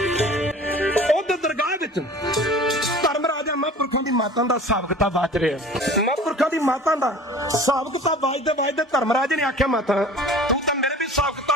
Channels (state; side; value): normal; both; correlation 0.43